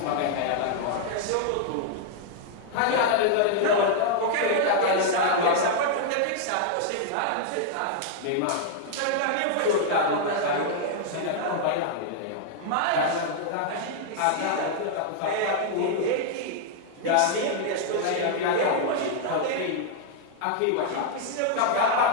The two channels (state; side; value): different; both; correlation -0.01